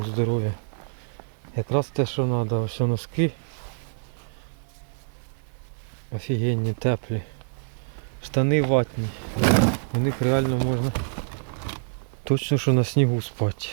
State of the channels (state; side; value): silent; left; 61 dB below the other